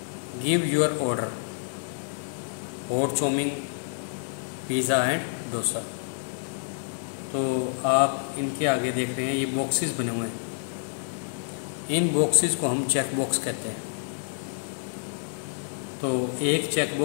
Give your order, hot chowmein, pizza and dosa. तो आप इनके आगे देख रहे हैं ये बॉक्सेस बने हुए हैं। इन बॉक्सेस को हम चेक बॉक्स कहते हैं। तो एक चेक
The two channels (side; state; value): right; silent; digital silence